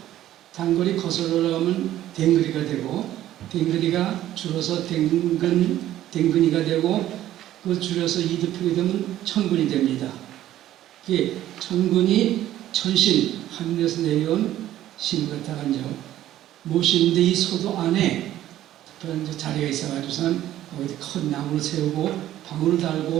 거슬러 올라가면 댕그리가 되고, 댕그리가 줄어서 댕근이가 되고, 그 줄여서 이득표가 되면 천군이 됩니다. 이게 천군이 천신, 하늘에서 내려온 신 같아가 모시는데 이 소도 안에 특별한 자리가 있어가지고선 거기 큰 나무를 세우고 방울을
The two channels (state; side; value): quieter; left; 13.1 dB